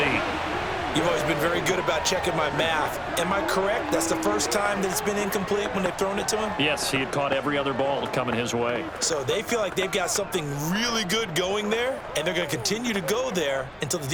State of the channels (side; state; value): both; identical; correlation 1.00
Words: You've always been very good about checking my math. Am I correct? That's the first time that it's been incomplete when they've thrown it to him? Yes, he had caught every other ball coming his way. So they feel like they've got something really good going there, and they're going to continue to go there until the